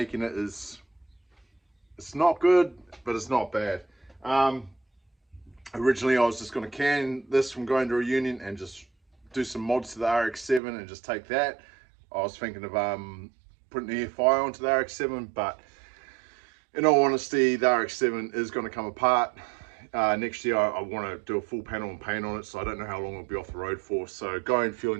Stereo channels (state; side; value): drops out; left; at 10.6 s